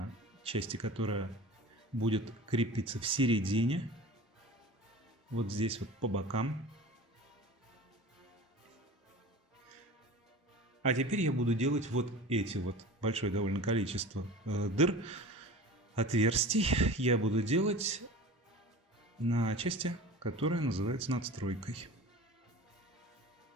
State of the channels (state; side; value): normal; both; correlation 0.37